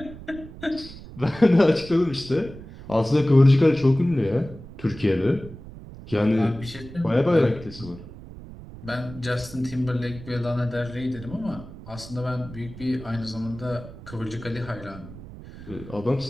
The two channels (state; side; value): noise; right; rumble, 15 dB below the sound